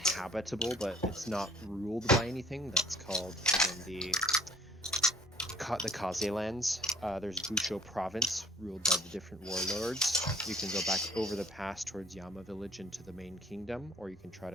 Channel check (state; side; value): normal; both; correlation 0.57